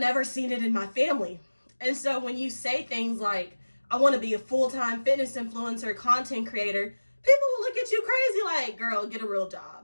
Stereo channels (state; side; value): inverted; both; correlation -1.00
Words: seen it in my family. And so when you say things like, I want to be a full-time fitness influencer, content creator, people will look at you crazy like, girl, get a real